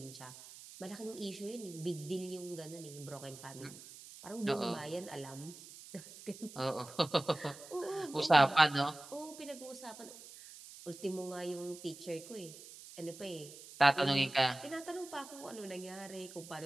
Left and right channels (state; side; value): noise; right; hiss, 16 dB below the sound